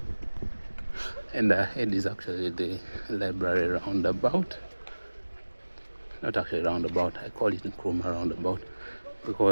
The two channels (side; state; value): both; inverted; correlation -1.00